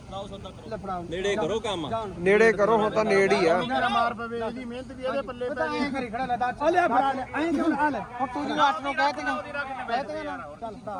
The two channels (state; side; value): identical; both; correlation 1.00